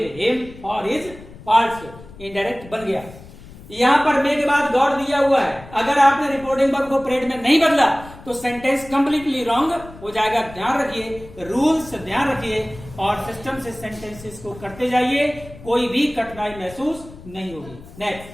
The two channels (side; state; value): left; noise; rumble, 18 dB below the sound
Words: him for his faults, indirect बन गया। यहां पर मे के बाद गॉड दिया हुआ है, अगर आपने रिपोर्टिंग वर्ब को प्रेड में नहीं बदला तो सेंटेंस कंप्लीटली रॉन्ग हो जाएगा। ध्यान रखिए, रूल्स ध्यान रखिए और सिस्टम से सेंटेंसेस को करते जाइए, कोई भी कठिनाई महसूस नहीं होगी। Next,